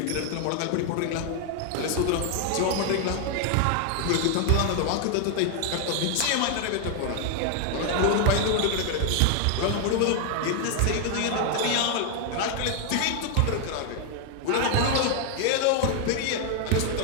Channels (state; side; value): different; both; correlation 0.00